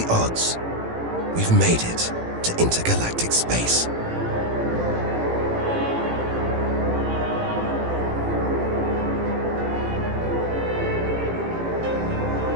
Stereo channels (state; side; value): late; left; 18 ms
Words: odds, we've made it to intergalactic space.